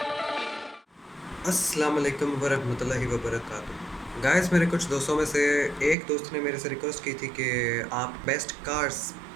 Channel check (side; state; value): left; drops out; at 6.0 s